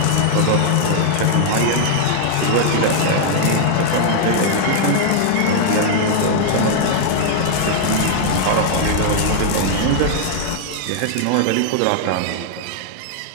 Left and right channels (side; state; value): both; different; correlation -0.01